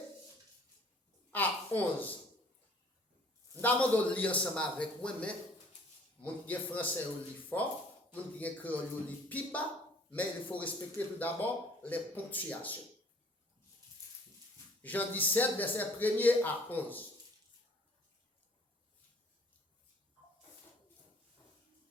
à 11. Nous avons lire ensemble avec moi, mais mon qui est français au lit fort, mon qui est créole au lit piba, mais il faut respecter tout d'abord les ponctuations. Jean 17, verset 1er à 11.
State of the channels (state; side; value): normal; both; correlation 0.55